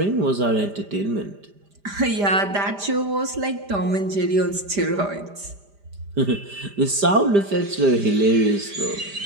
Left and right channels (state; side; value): late; left; 5.0 ms